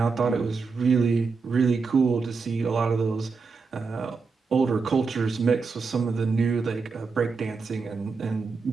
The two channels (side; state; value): left; quieter; 4.7 dB